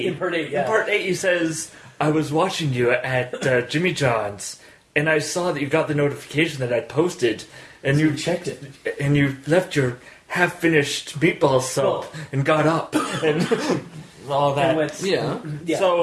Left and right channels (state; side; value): identical; both; correlation 1.00